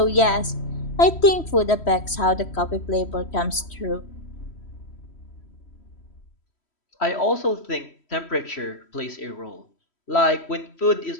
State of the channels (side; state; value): right; late; 3.1 ms